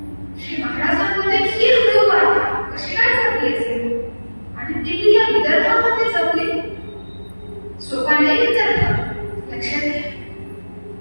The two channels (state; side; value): inverted; both; correlation -1.00